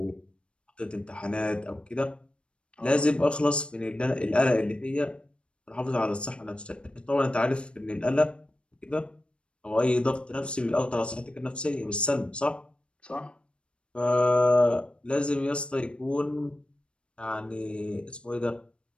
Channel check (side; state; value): right; late; 0.057 ms